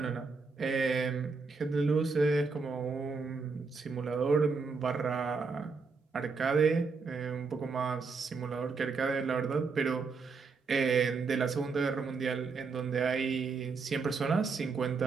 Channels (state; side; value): quieter; left; 4.7 dB